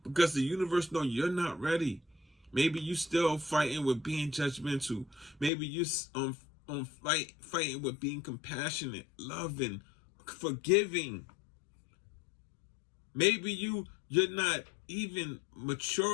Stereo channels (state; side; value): drops out; right; at 5.5 s